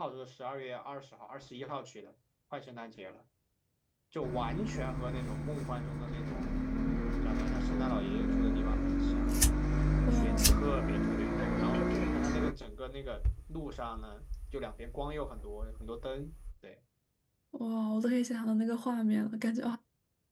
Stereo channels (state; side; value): identical; both; correlation 1.00